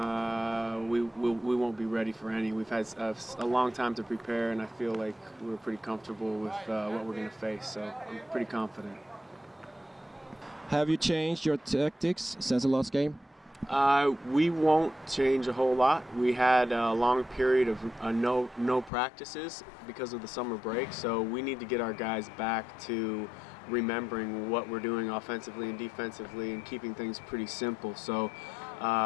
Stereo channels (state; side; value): drops out; right; at 18.9 s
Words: we won't be ready for any. We've had a long time to prepare, and I feel like we're pretty comfortable with what we're going to face, so I'm pretty confident. Have you changed your tactics since the last game? We won't change a whole lot. We had a long period of no practices because of the summer break, so we need to get our guys back to remembering what we're doing offensively and defensively and keeping things pretty simple. So